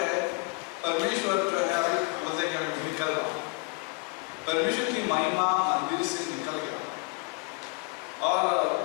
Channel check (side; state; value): right; quieter; 31.8 dB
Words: परमेश्वर जो है, अभी बोलते हैं कि मैं निकल रहा हूँ, परमेश्वर की महिमा मंदिर से निकल गया। और